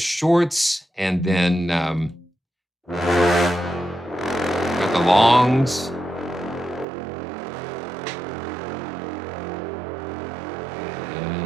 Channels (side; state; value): left; drops out; at 6.9 s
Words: and then got the longs.